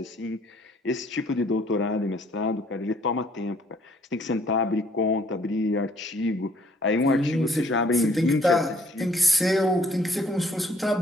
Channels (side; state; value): both; normal; correlation 0.62